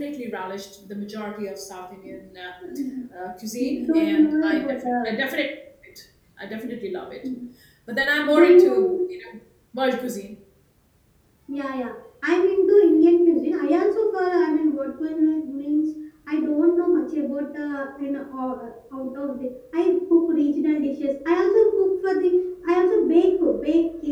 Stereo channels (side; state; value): both; identical; correlation 1.00